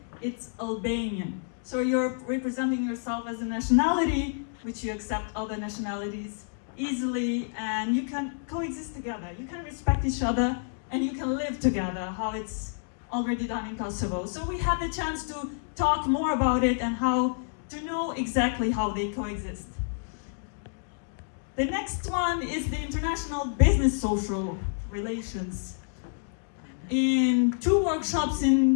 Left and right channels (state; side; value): silent; right; digital silence